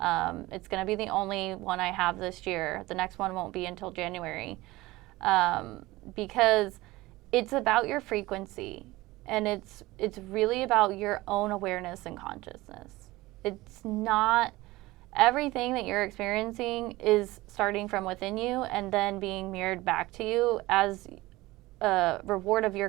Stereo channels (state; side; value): quieter; left; 19.4 dB